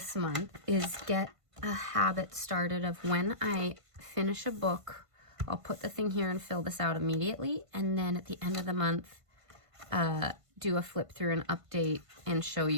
month is get a habit started of when I finish a book, I'll put the thing here and fill this out immediately. And then at the end of the month, do a flip through and update and show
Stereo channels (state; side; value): late; left; 1.5 ms